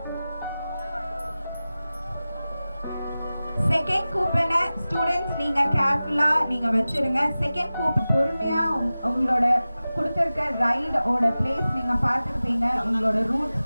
செகண்ட் கூப்பனை ஸ்டூடெண்ட்ஸ் நீங்கள் கேர்ஃபுல்லாக நீங்கள் வச்சுருங்க. செகண்ட் கூப்பன் பொறுமையாக உங்களோட கொடுத்துருக்க ரைடோட பிளேஸ் நீங்கள் பார்த்துருப்பீங்க, உங்களோட ரூட்ஸ்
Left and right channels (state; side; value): inverted; both; correlation -0.96